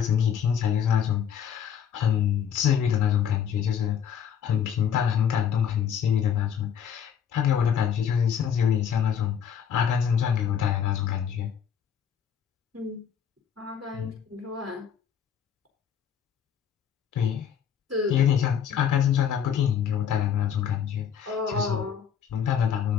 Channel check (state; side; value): quieter; right; 8.4 dB